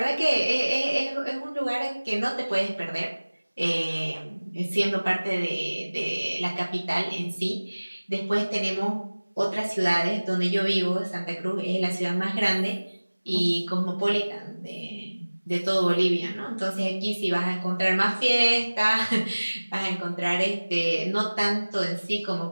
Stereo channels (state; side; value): inverted; both; correlation -1.00